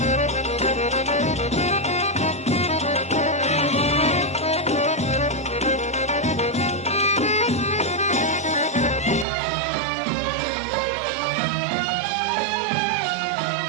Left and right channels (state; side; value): drops out; left; at 9.2 s